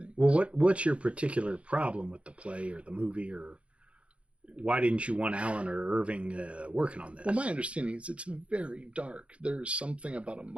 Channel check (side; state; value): left; late; 0.061 ms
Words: Well, what's your particular problem with the play or the movie, or why didn't you want Alan or Irving working on this? Well, my understanding is it's very dark. There's something about a